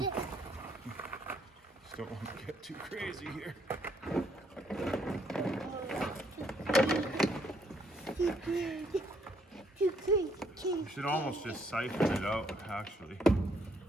Just don't want to get too crazy here. Too crazy. You should almost just siphon it out, actually. I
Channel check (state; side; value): normal; both; correlation 0.69